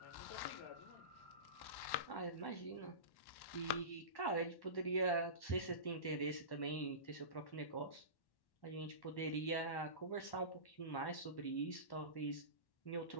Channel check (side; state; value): right; late; 1.1 ms